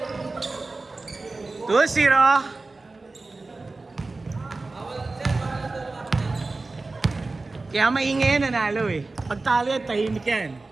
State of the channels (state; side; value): quieter; left; 3.5 dB